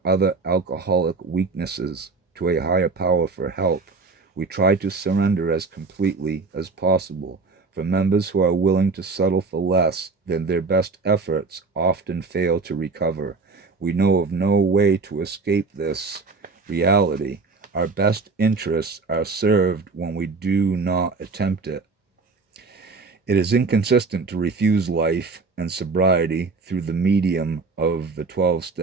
other alcoholic weaknesses to a higher power for help. We try to surrender as completely as possible. For members who are willing to settle for less than their best efforts often fail to recover. We know of no way to escape this reality. Our best interests are served when we do not attempt it. It is inconsistent to refuse life and sobriety through the medium of the 12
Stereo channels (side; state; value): left; quieter; 4.2 dB